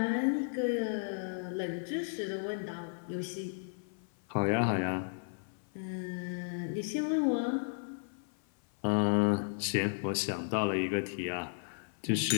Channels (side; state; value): right; silent; 55 dB below the other